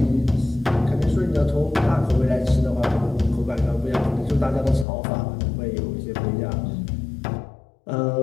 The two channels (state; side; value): drops out; right; at 4.9 s